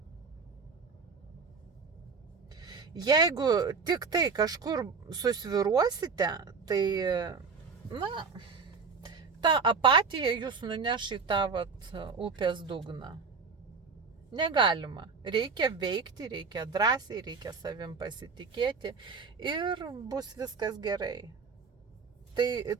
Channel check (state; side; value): quieter; left; 5.1 dB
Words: Jeigu tik tai kažkur susviruosite, tai, ta apatija jūs nuneš į tą upės dugną. Negalima. Reikia veikti, reikia drąsiai, reikia savim pasitikėti ir bus viskas gerai.